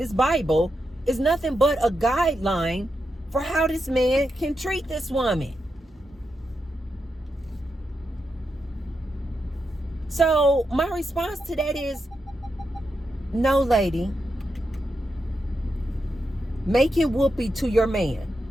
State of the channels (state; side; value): normal; both; correlation 0.86